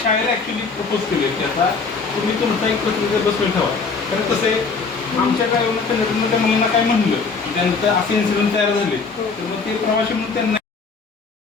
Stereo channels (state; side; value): quieter; right; 4.7 dB